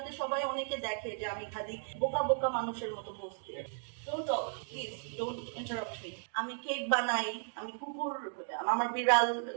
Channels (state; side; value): silent; left; digital silence